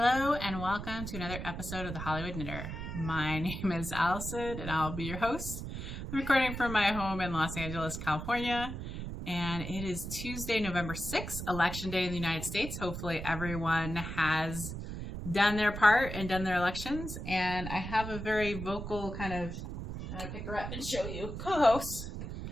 and welcome to another episode of The Hollywood Knitter. My name is Allison and I'll be your host. I'm recording from my home in Los Angeles, California, and it is Tuesday, November 6th, Election Day in the United States. Hopefully everyone has done their part and done their elections, and I have a very vocal kind of, I'm going to pick her up and show you, co-host.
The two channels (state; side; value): noise; right; rumble, 7 dB below the sound